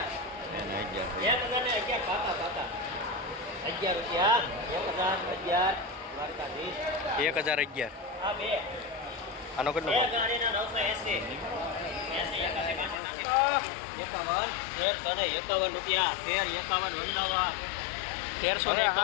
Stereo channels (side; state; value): right; drops out; at 13.0 s